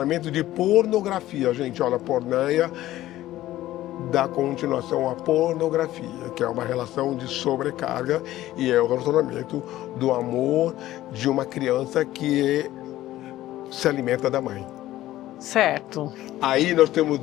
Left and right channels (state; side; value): quieter; right; 14.9 dB